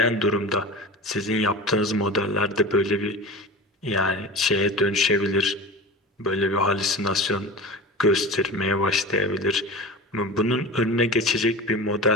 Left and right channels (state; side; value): normal; both; correlation 0.32